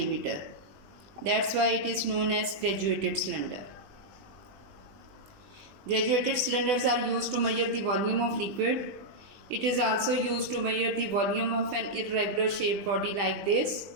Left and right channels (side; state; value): left; late; 20 ms